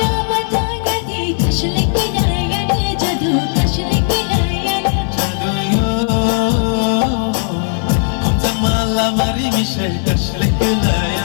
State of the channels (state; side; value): silent; right; digital silence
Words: तांगती कसले किनायन जादू कसले किनायन जादूयो हमचा मला मारी मिशे कसले